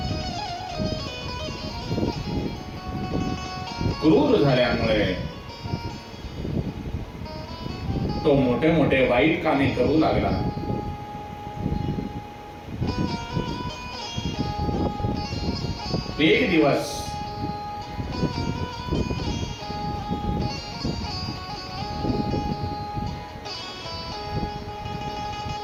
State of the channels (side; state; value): both; identical; correlation 1.00